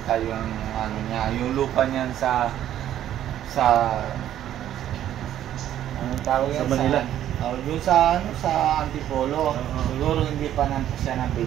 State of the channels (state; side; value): quieter; left; 11.6 dB